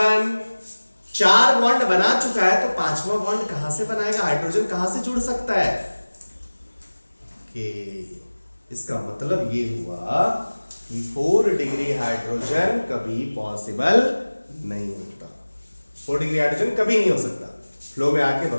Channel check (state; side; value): inverted; both; correlation -1.00